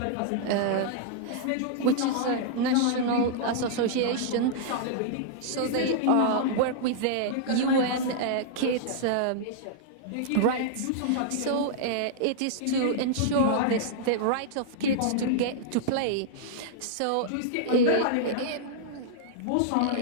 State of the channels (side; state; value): both; different; correlation -0.01